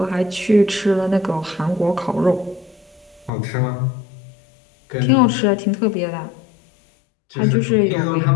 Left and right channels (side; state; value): right; drops out; at 3.3 s